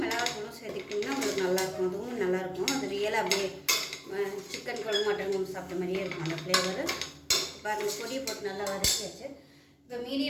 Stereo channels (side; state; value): both; identical; correlation 1.00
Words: மிளகாத்தூளும் சேர்த்துக்கிட்டிங்கன்னா உங்களுக்கு நல்லாயிருக்கும். அதுவும் நல்லாயிருக்கும். அது ரியலாக அப்படியே சிக்கன் குழம்பு மட்டன் குழம்பு சாப்பிட்ட மாதிரியே இருக்கும் அந்த ஃப்ளேவர். இப்போ அந்த பொடியை போட்டு நல்லா வதக்கியாச்சு. இப்போ